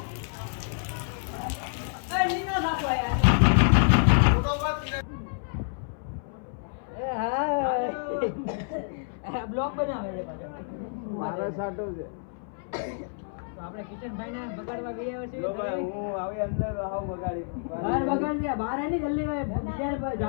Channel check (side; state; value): right; silent; 59 dB below the other